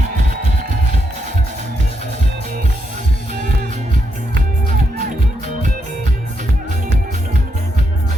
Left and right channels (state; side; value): normal; both; correlation 0.80